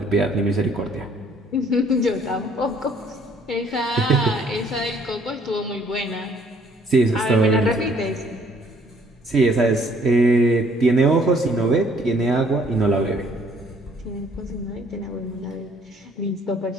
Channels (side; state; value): both; normal; correlation 0.61